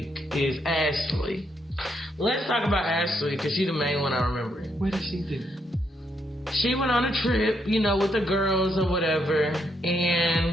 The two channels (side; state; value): both; normal; correlation 0.76